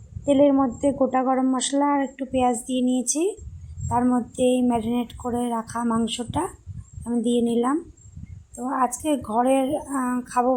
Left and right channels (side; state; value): both; identical; correlation 1.00